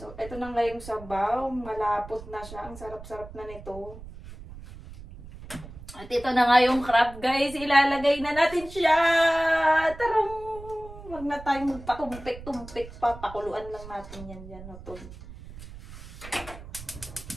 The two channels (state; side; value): noise; right; rumble, 15 dB below the sound